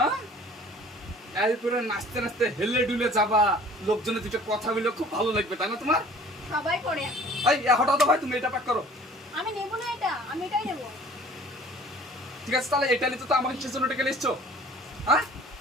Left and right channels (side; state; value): both; normal; correlation 0.50